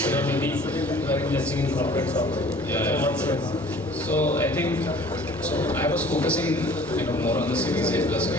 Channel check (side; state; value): both; normal; correlation 0.50